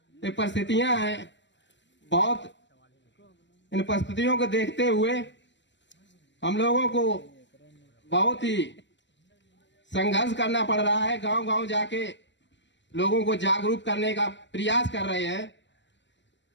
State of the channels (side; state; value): right; late; 0.53 ms